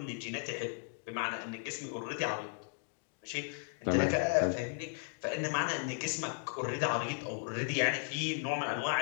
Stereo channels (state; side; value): silent; right; 54 dB below the other